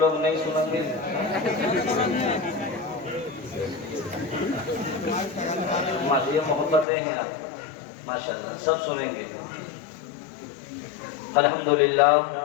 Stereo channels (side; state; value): right; drops out; at 6.9 s